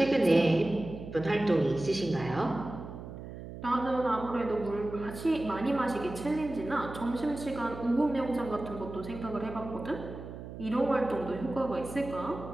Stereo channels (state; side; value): noise; right; hum, 11 dB below the sound